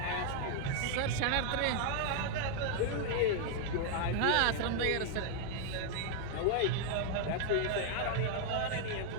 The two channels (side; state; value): both; different; correlation 0.00